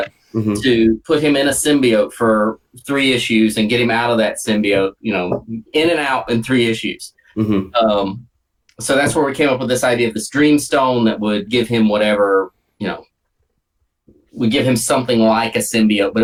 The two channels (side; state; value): both; identical; correlation 1.00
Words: to put him in a symbiote for 3 issues and get him out of that symbiote, you know, in and out in 3 issues. So that's where we came up with this idea of this dream stone that would give him whatever, you know, would give him something like a symbiote, but